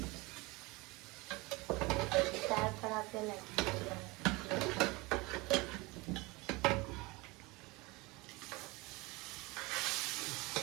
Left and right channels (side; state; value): left; quieter; 23.5 dB